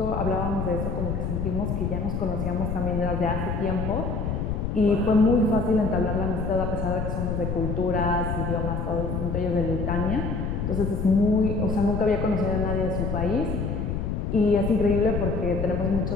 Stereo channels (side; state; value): left; noise; rumble, 2 dB below the sound